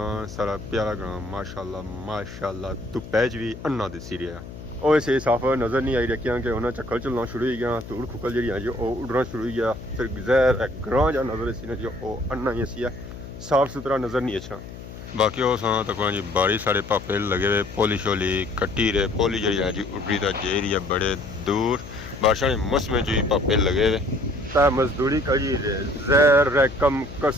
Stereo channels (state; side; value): noise; left; hum, 13 dB below the sound